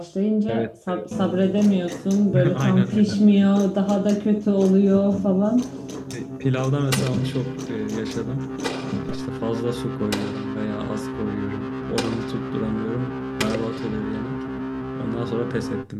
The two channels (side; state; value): both; identical; correlation 1.00